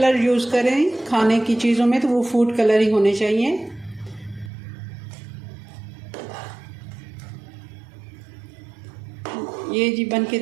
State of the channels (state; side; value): drops out; left; at 4.5 s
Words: यूज़ करें खाने की चीज़ों में तो वो फूड कलर ही होने चाहिए। ये जी बन के